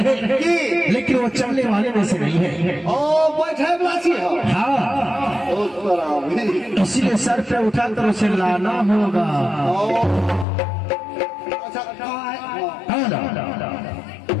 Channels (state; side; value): drops out; right; at 10.5 s